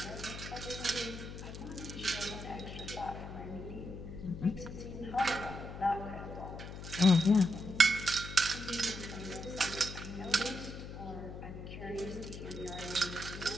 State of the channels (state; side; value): noise; left; hum, 10 dB below the sound